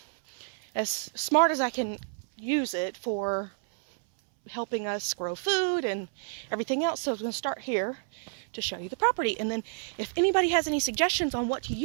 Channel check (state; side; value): silent; left; 58 dB below the other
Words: as smart as I can use it for helping us grow food and everything else. So I'm going to start here to show you the property, and then if anybody has any suggestions on what to